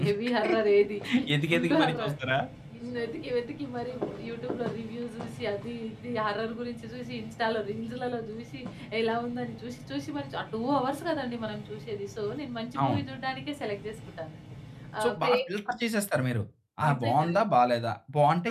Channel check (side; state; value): both; identical; correlation 1.00